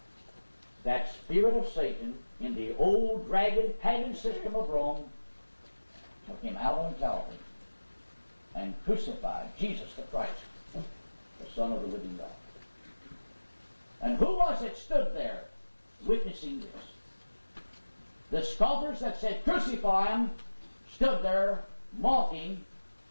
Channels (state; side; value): inverted; both; correlation -1.00